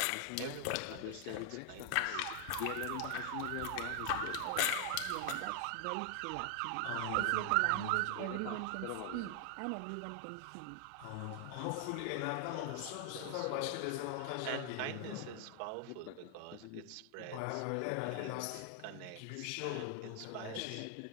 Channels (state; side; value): different; both; correlation 0.00